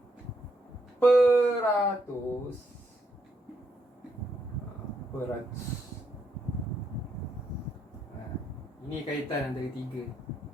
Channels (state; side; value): normal; both; correlation 0.77